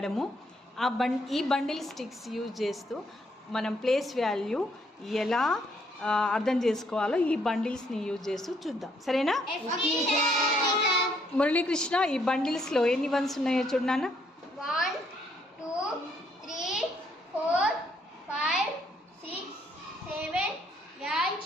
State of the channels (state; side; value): normal; both; correlation 0.70